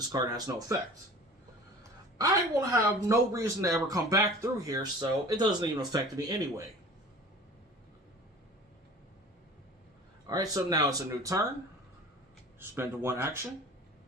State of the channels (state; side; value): normal; both; correlation 0.42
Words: card has no effect. I will have no reason to ever come back through here, so it doesn't even affect me anyway. Alright, so now it's a new turn. Spend one action.